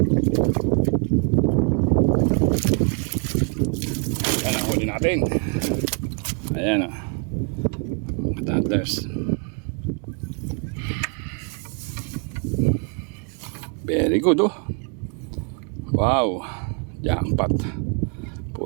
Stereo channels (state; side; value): quieter; left; 38.8 dB